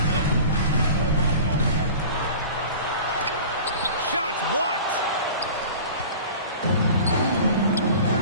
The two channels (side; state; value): both; inverted; correlation -0.40